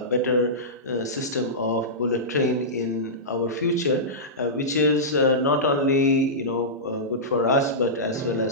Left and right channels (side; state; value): both; normal; correlation -0.16